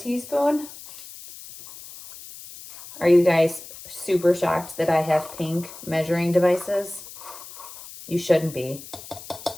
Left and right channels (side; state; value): left; noise; hiss, 16 dB below the sound